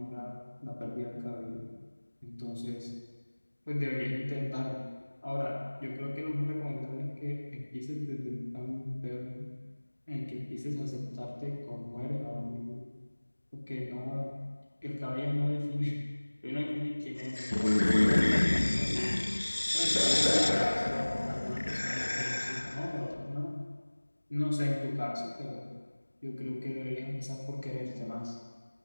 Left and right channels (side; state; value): both; inverted; correlation -1.00